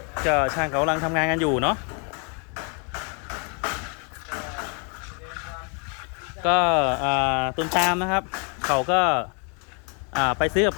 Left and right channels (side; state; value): right; quieter; 37.7 dB